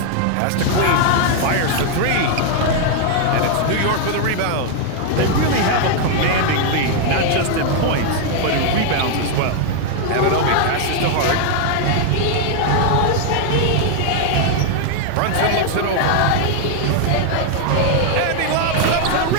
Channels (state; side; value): different; both; correlation 0.00